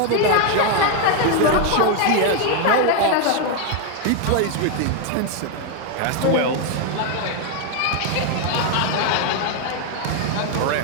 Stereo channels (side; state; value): both; different; correlation 0.01